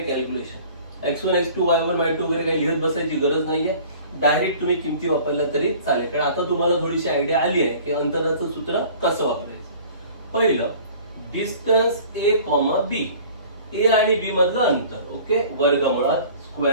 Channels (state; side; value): inverted; both; correlation -0.47